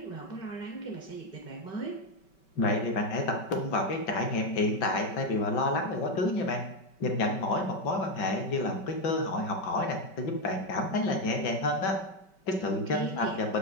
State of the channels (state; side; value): late; right; 5.2 ms